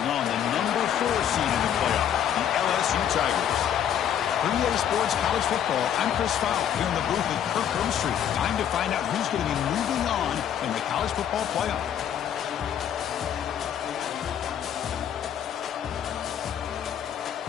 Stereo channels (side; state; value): right; quieter; 9.5 dB